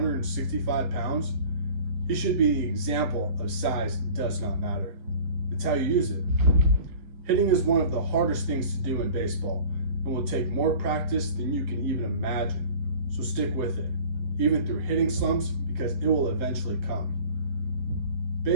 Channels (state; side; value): late; left; 7.0 ms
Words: pounds, he should be the example of size does not matter. It's how you use it. Hitting is one of the hardest things to do in baseball and will take more practice than you can even imagine. So stick with it, even through hitting slumps, because it will eventually come.